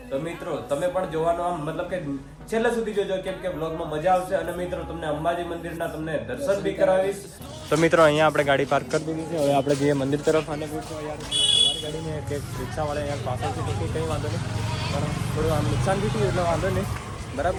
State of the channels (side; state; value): both; identical; correlation 1.00